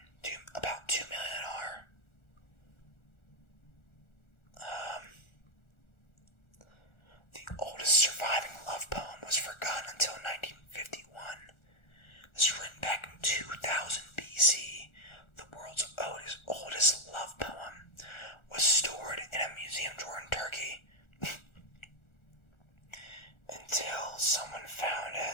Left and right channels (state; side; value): late; right; 1.4 ms